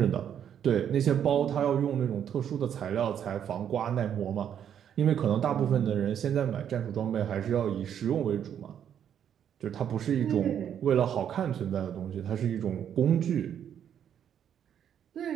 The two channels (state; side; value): quieter; left; 9.1 dB